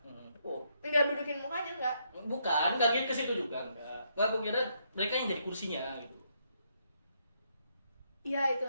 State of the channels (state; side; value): inverted; both; correlation -0.75